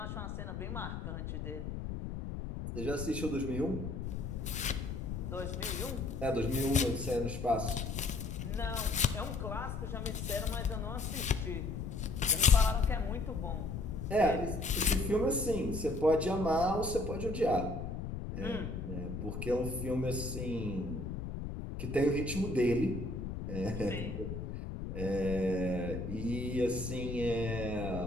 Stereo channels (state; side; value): noise; left; rumble, 5 dB below the sound